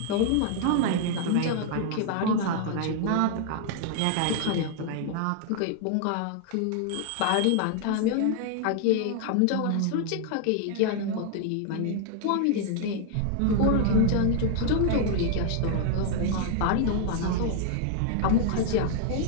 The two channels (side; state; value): both; different; correlation 0.00